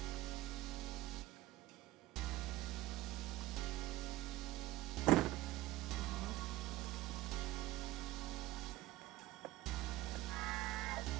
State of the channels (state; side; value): quieter; left; 16.6 dB